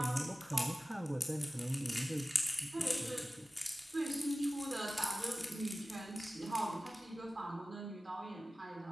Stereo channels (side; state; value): both; normal; correlation 0.97